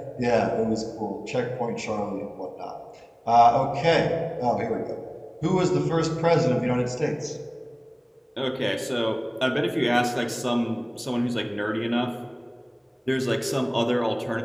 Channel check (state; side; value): identical; both; correlation 1.00